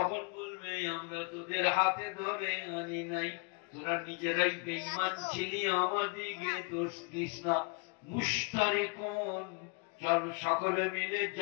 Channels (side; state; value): right; quieter; 33.1 dB